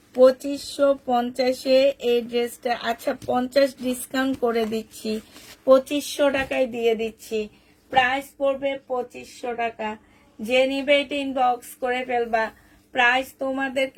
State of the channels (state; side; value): identical; both; correlation 1.00